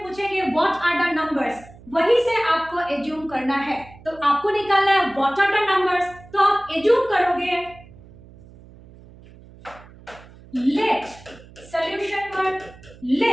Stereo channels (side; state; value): right; noise; hum, 22 dB below the sound